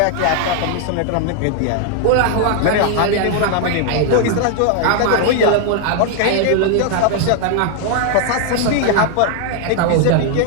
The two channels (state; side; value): different; both; correlation 0.00